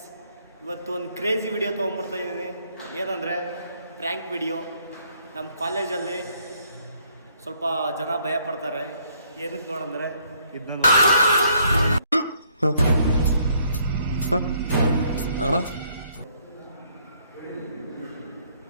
ಇವತ್ತು ಒಂದು ಕ್ರೇಜಿ ವಿಡಿಯೋ ತೊಗೊಂಬರ್ತಾ ಇದ್ದೀನಿ. ಏನಂದರೆ ಪ್ರ್ಯಾಂಕ್ ವಿಡಿಯೋ. ನಮ್ಮ ಕಾಲೇಜಲ್ಲಿ ಸ್ವಲ್ಪ ಜನ ಭಯ ಪಡ್ತಾರೆ. ಏನಕ್ಕೆ ನೋಡಂದರೆ ಇದನ್ನು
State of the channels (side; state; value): both; inverted; correlation -0.67